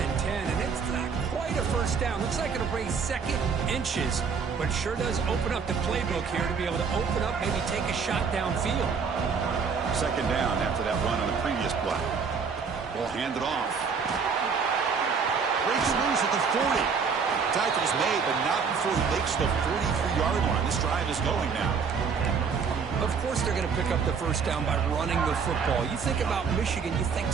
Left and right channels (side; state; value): left; quieter; 5.8 dB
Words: and 10, and it's not quite a first down. Looks like it'll bring 2nd inches, but sure does open up the playbook here to be able to open up, maybe take a shot downfield. 2nd down after that run on the previous play. Ball handed off. Breaks loose at the 40. Tackle's made, but not before he makes the 43-yard line. This drive is going now. Of course they're going to pick up the first down by running the football. You think about Michigan, you think